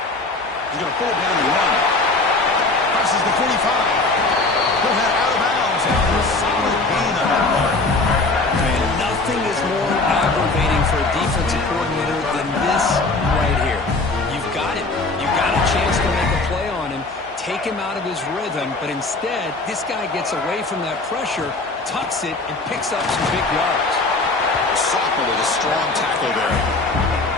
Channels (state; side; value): quieter; right; 3.3 dB